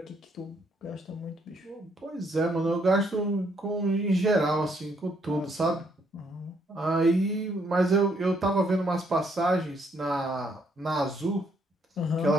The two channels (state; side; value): normal; both; correlation 0.71